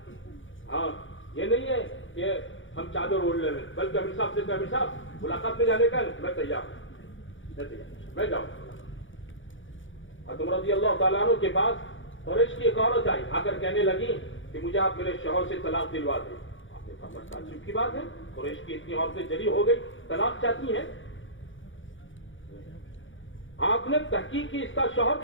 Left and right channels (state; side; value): late; right; 0.56 ms